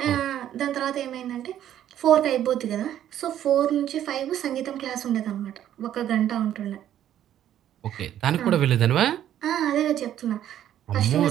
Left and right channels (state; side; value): quieter; left; 11.2 dB